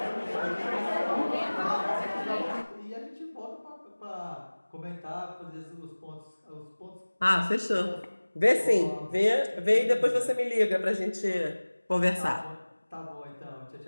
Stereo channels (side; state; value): both; inverted; correlation -1.00